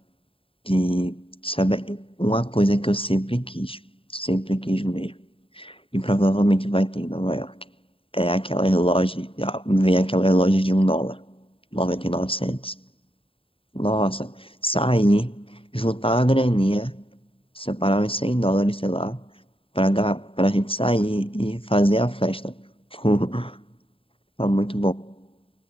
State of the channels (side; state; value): right; late; 0.27 ms